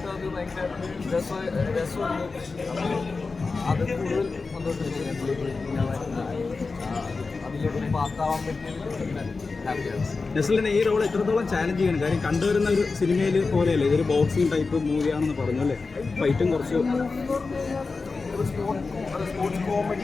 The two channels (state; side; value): quieter; right; 4.2 dB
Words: അത് ഭയങ്കര രസമുണ്ട്. അത് കൂടുതൽ സന്തോഷം അതിലേക്ക് പാർട്ടാവാൻ പറ്റിയ. ഈ റോൾ എത്രത്തോളം ചാലഞ്ച് ചെയ്യണം? കാര്യം കണ്ടുവരുന്ന ഒരു സിനിമയിൽ പോലെയല്ലേ, ഇതൊരു ബോക്സിംഗ് ടൈപ്പ് മൂവിയാണെന്ന് പറഞ്ഞു അല്ലേ? ഫൈറ്റും കുറച്ച് സ്പോർട്സ്